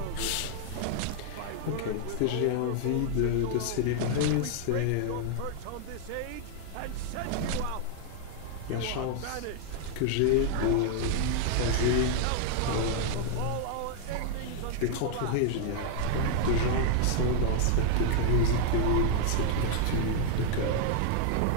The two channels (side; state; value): both; different; correlation 0.00